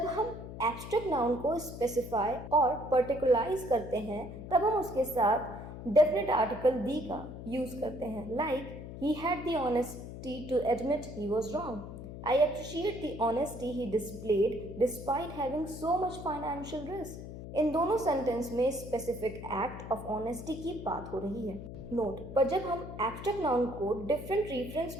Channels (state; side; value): noise; left; hum, 10 dB below the sound